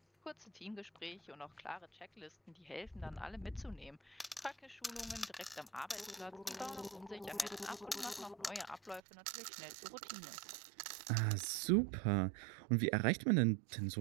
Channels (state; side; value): drops out; left; at 9.0 s